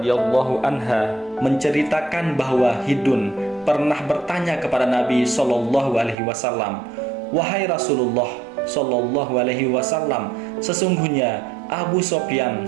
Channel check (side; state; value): left; drops out; at 6.2 s